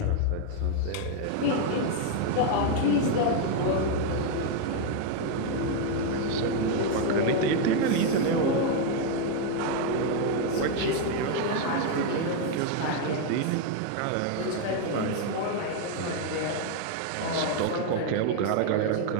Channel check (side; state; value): both; different; correlation 0.01